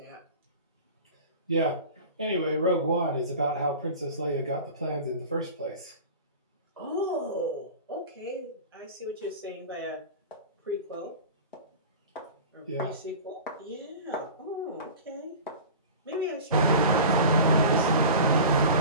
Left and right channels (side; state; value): both; inverted; correlation -0.35